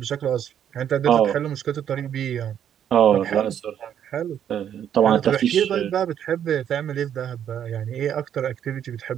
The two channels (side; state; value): left; quieter; 9.6 dB